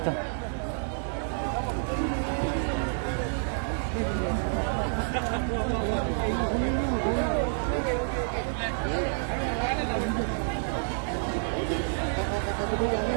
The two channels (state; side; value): silent; left; digital silence